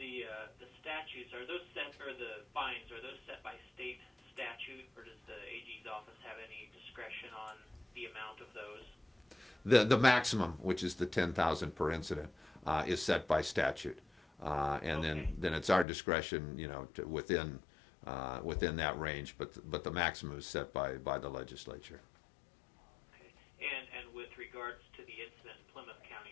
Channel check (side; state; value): right; drops out; at 15.9 s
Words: statutes, are those set, or the fines, are those set by state statute, or does the AG's office have any discretion on the amount of those? The maximum, which is the 10,000 per incident, is set by statute, and Okay. then it's our discretion, you know, to within that range. But the maximum is set by the legislature. Okay. And with regards to the incident in Plymouth